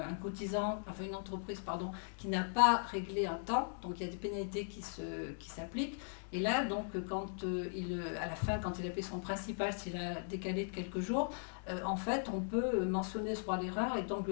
cotisant, une entreprise, qui n'a pas réglé un temps, donc il y a des pénalités qui s'appliquent. Et là, donc, à la fin, quand il a payé son principal, s'il a décalé de quelques jours, en fait, on peut mentionner ce droit à l'erreur et donc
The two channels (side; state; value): right; silent; digital silence